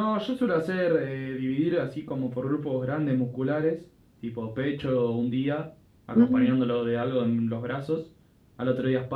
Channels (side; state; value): both; identical; correlation 1.00